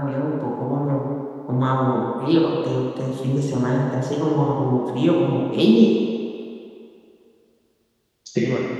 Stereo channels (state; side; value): identical; both; correlation 1.00